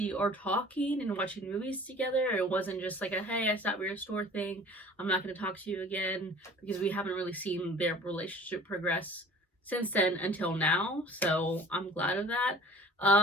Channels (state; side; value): normal; both; correlation 0.47